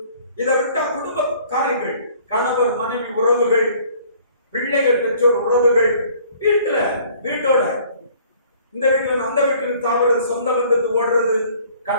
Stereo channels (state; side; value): inverted; both; correlation -0.55